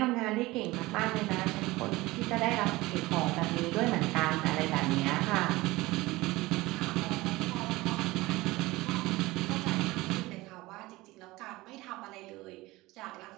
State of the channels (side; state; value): left; quieter; 20.0 dB